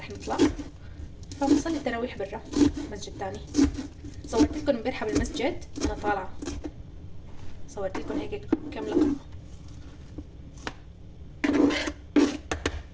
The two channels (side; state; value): both; identical; correlation 1.00